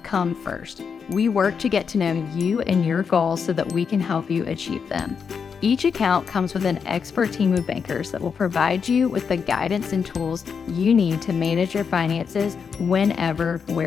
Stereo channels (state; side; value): quieter; right; 6.2 dB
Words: come first. We work to get to know you and your goals so that we can help you achieve them. Each account comes with an expert team of bankers that will provide you with the guidance and tools you need to manage your finances whenever,